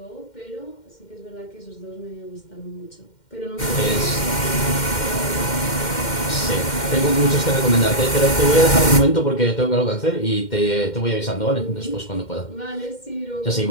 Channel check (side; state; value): right; late; 2.1 ms